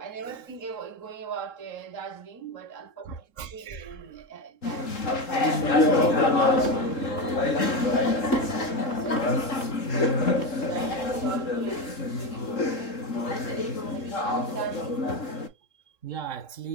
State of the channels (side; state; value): right; late; 3.7 ms